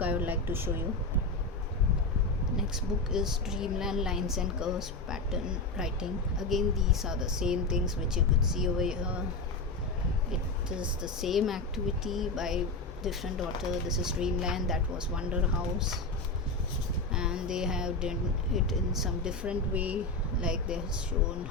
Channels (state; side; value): quieter; right; 3.2 dB